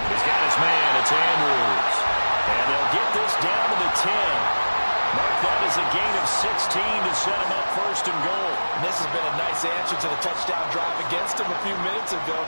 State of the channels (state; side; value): inverted; both; correlation -1.00